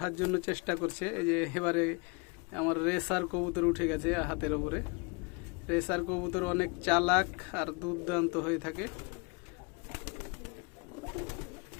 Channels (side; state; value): right; quieter; 31.2 dB